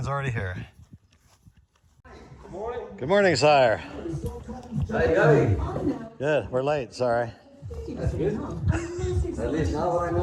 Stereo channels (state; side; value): identical; both; correlation 1.00